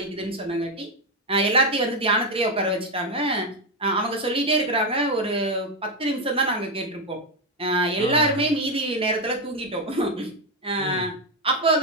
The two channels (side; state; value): both; normal; correlation 0.07